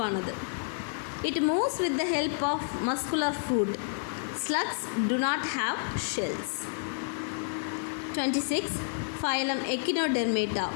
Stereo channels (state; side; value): silent; right; 58 dB below the other